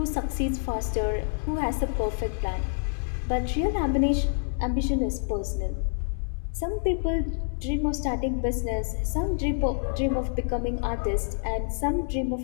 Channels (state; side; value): silent; right; 58 dB below the other